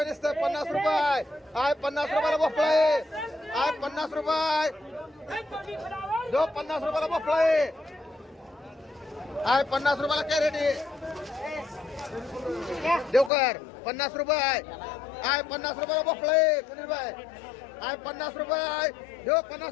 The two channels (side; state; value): right; drops out; at 13.3 s